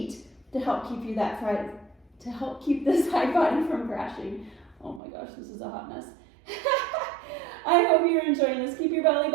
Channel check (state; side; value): drops out; left; at 5.0 s